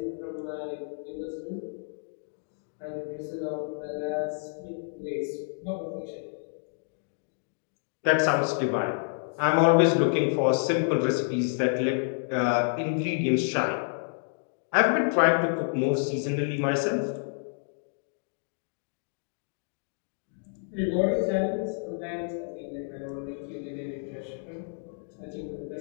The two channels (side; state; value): right; silent; digital silence